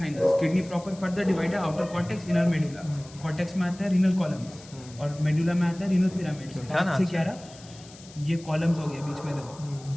Kidney proper further divide है outer cortex inner medulla. Cortex में आता है रीनल कॉलम्स और मेडुला में आता है रीनल पिरामिड्स। से क्या रहा, ये कॉलम्स हो गया बीच में, देखो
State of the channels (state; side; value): noise; left; hiss, 20 dB below the sound